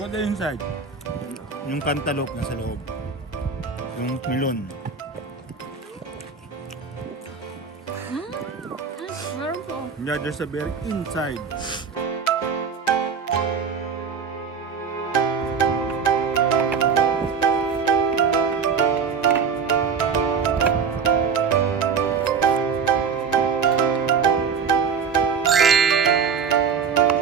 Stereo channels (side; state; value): left; quieter; 6.2 dB